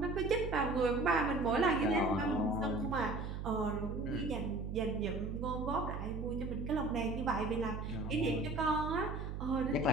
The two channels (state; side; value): noise; right; hum, 5 dB below the sound